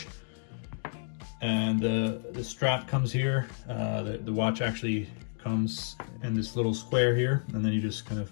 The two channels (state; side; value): silent; right; digital silence